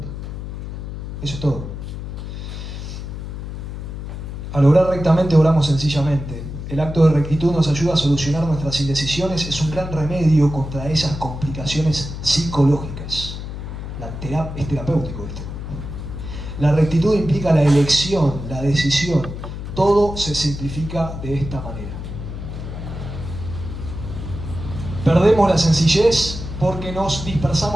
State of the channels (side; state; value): left; noise; hum, 8 dB below the sound